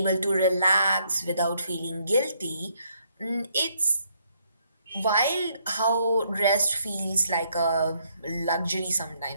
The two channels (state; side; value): inverted; both; correlation -0.72